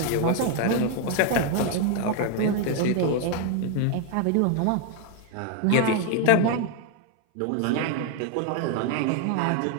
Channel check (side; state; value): both; different; correlation 0.00